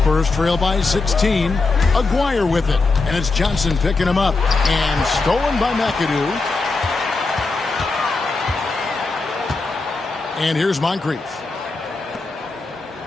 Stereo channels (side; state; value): right; quieter; 3.7 dB